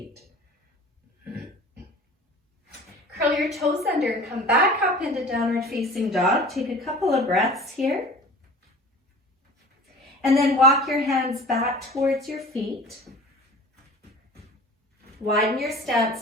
Curl your toes under and come back up into downward facing dog. Take a couple of breaths here. And then walk your hands back towards your feet. Widen your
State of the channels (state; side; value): normal; both; correlation 0.42